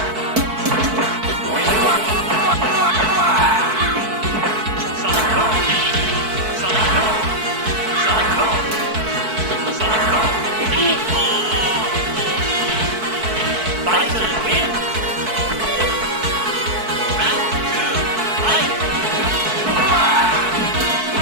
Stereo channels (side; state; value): left; late; 4.6 ms